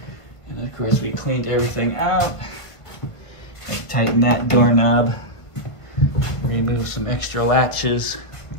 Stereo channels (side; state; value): right; late; 1.4 ms